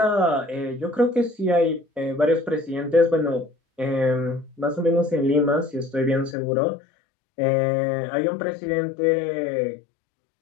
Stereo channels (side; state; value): right; drops out; at 6.4 s